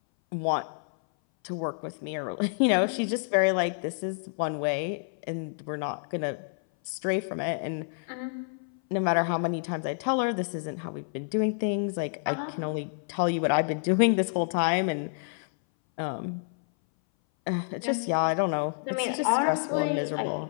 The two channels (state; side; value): silent; right; 58 dB below the other